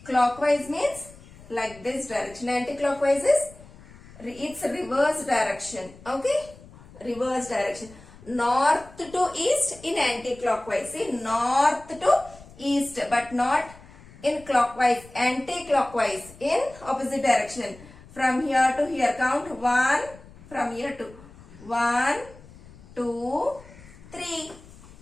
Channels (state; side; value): noise; left; rumble, 21 dB below the sound